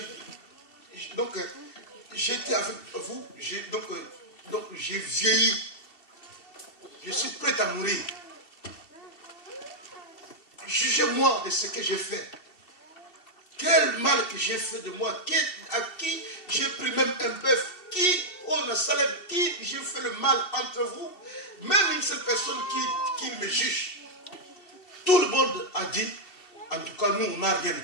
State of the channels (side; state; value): right; late; 2.7 ms